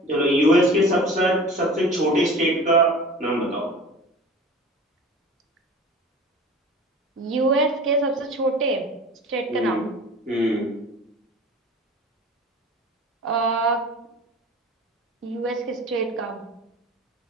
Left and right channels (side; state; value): both; normal; correlation 0.40